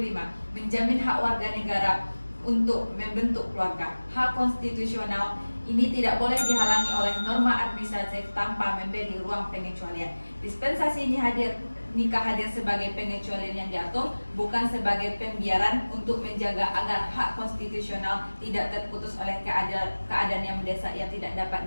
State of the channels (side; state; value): both; inverted; correlation -1.00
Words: menjamin hak warga negara untuk membentuk keluarga. Hak konstitusional ini tidak boleh dihalangi oleh norma administratif tanpa memberi ruang pengecualian. Dispensasi ini nikah hadir sebagai pengecualian yang diatur, bukan sebagai pembiaran untuk menjaga agar hak konstitusional tidak terputus oleh keadaan yang mendesak yang tidak dapat